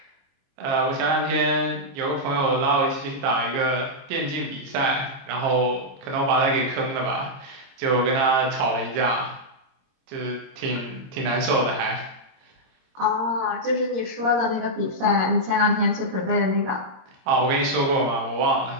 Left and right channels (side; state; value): left; late; 22 ms